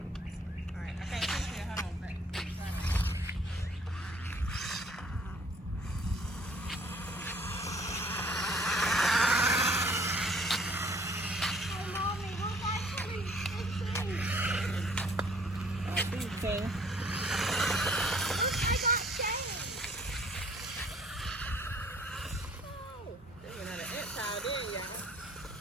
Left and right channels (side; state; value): both; normal; correlation 0.57